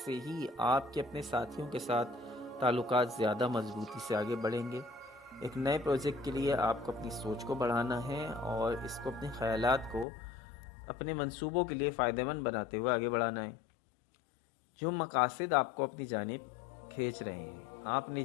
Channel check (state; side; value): drops out; right; at 10.1 s